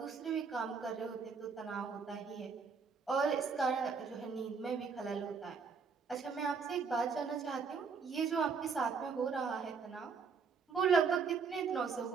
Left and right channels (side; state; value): left; quieter; 5.4 dB